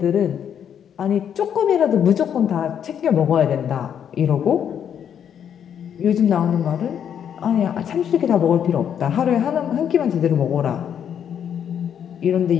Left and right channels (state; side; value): quieter; right; 8.7 dB